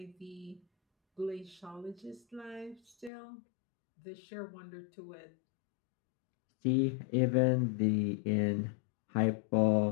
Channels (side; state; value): right; drops out; at 3.1 s